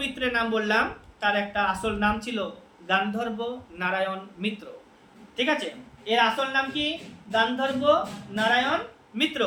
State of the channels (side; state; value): both; identical; correlation 1.00